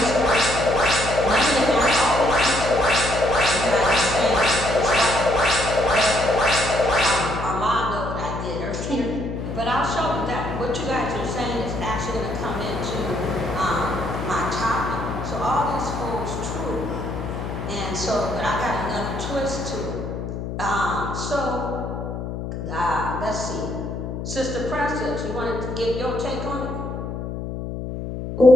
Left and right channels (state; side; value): noise; left; hum, 6 dB below the sound